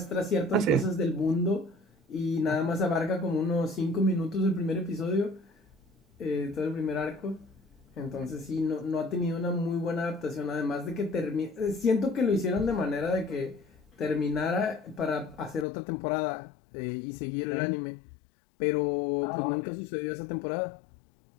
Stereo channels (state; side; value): drops out; right; at 15.7 s